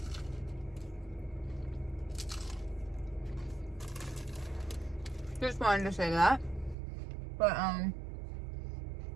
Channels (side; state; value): left; drops out; at 6.8 s